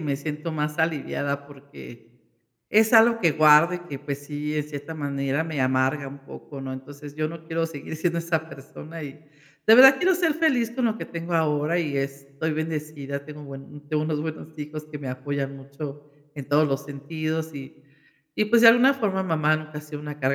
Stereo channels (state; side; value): identical; both; correlation 1.00